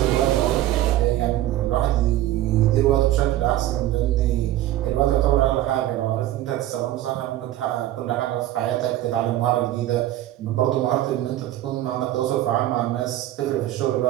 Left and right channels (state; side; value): quieter; left; 14.0 dB